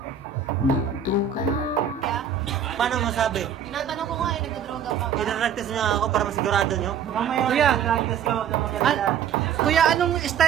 Paano masabi? Tinatanong ko nga nagdodroga pa ba? Pinaractis niya ako para masigurado niyo. Kuya, kuya, anong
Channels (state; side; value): quieter; left; 7.9 dB